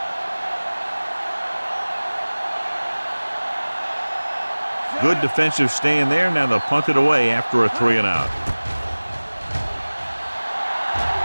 Good defensive stand there. Now they'll punt it away after a 3-and-out.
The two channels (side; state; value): both; inverted; correlation -1.00